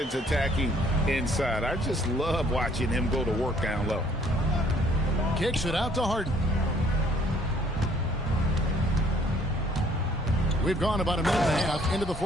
attacking inside. I just love watching him go to work down low. Kicks it out to Harden. We've gone about a minute and a half into the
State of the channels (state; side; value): normal; both; correlation 0.61